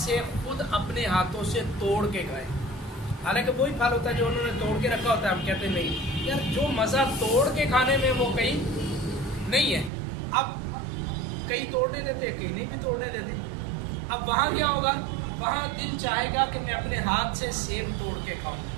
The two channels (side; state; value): left; drops out; at 9.9 s